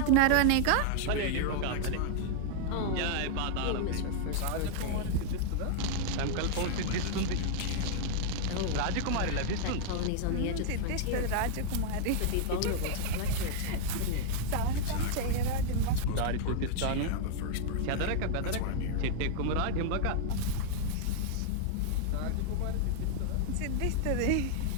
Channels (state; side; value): different; both; correlation 0.00